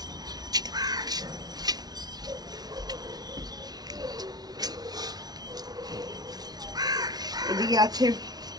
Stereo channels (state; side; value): late; left; 0.19 ms